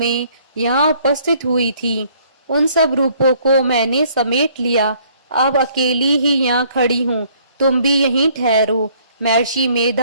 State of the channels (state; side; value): inverted; both; correlation -0.62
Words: यहाँ उपस्थित हुई थी। उन सब रूपों को मैंने समेट लिया। अब अकेली ही यहाँ खड़ी हूँ, तुम भी यहीं ठहरो। महर्षि